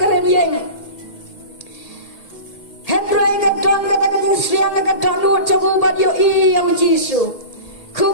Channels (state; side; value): late; right; 2.1 ms